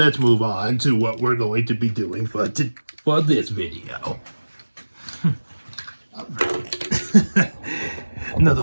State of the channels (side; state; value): both; inverted; correlation -1.00